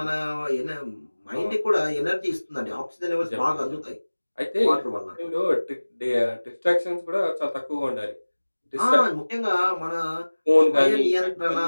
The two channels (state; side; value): inverted; both; correlation -1.00